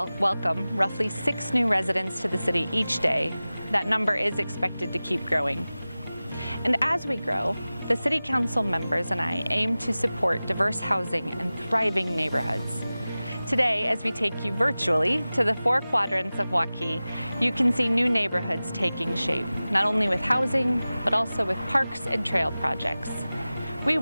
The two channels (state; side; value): inverted; both; correlation -0.97